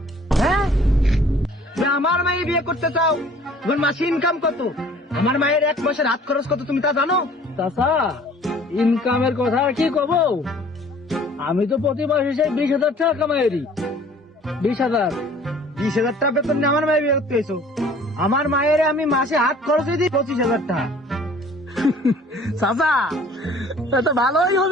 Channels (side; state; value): both; normal; correlation 0.52